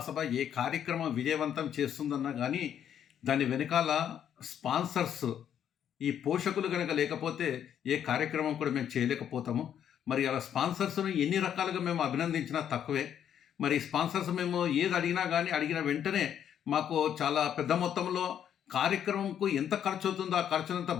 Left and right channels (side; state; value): right; quieter; 9.4 dB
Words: ఏ కార్యక్రమం విజయవంతం చేస్తుందన్నా కానీ దాని వెనకాల స్పాన్సర్స్ ఈ పోషకులు కనుక లేకపోతే ఏ కార్యక్రమం కూడా మేము చేయలేకపోతాము. మరి అలా స్పాన్సర్స్ను ఎన్ని రకాలుగా మేము అభినందించినా తక్కువే. మరి స్పాన్సర్స్ మేము ఏది అడిగినా కానీ అడిగిన వెంటనే మాకు చాలా పెద్ద మొత్తంలో కార్యక్రమంకు ఎంత ఖర్చు అవుతుందో ఆ ఖర్చునంతా